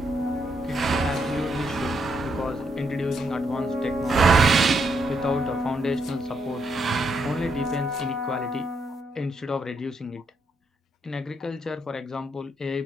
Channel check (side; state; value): both; normal; correlation 0.77